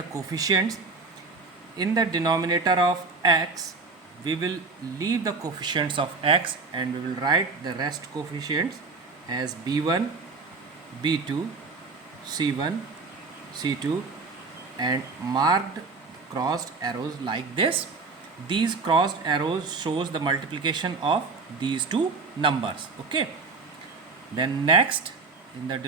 coefficients. In the denominator of x we will leave the coefficients of x and we will write the rest coefficients as b1, b2, c1, c2 and marked crossed arrows like this. These crossed arrows shows the multiplication of these two numbers. Okay, then next in the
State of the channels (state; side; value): quieter; left; 4.1 dB